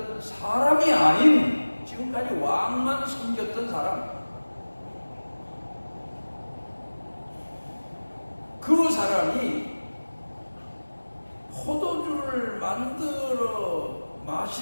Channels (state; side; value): inverted; both; correlation -1.00